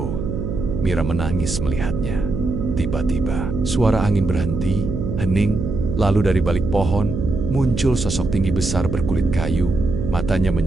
Mira menangis melihatnya. Tiba-tiba, suara angin berhenti, hening, lalu dari balik pohon, muncul sosok tinggi besar berkulit kayu, matanya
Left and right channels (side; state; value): right; noise; hum, 4 dB below the sound